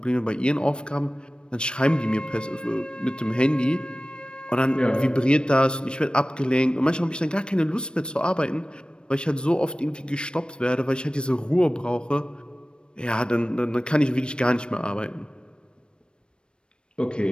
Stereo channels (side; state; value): right; late; 0.054 ms